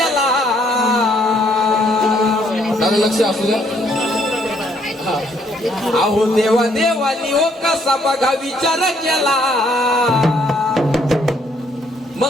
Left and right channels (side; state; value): both; normal; correlation 0.68